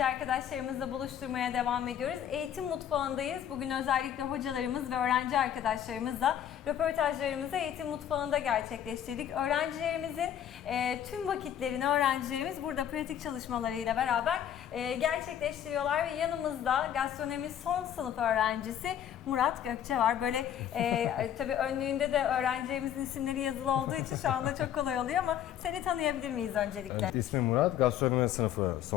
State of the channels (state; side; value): quieter; right; 10.1 dB